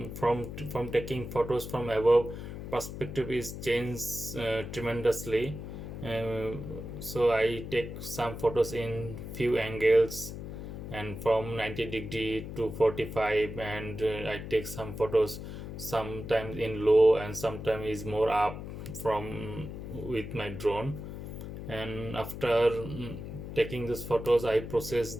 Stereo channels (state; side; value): noise; left; hum, 9 dB below the sound